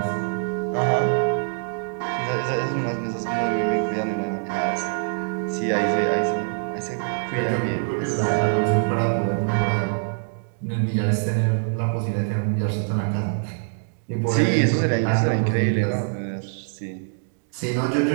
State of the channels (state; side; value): silent; left; digital silence